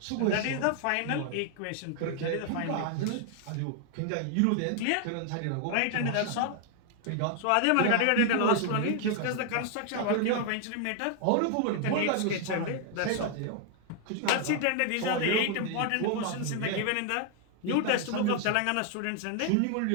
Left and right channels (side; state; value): both; different; correlation 0.00